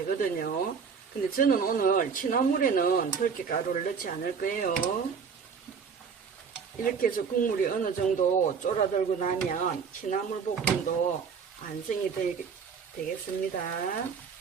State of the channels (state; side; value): quieter; left; 6.1 dB